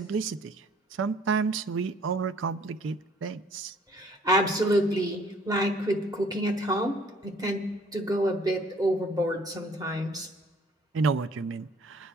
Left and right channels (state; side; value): normal; both; correlation 0.58